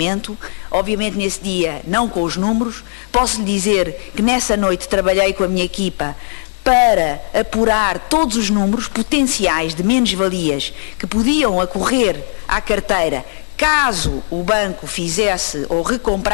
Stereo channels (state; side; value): silent; right; 64 dB below the other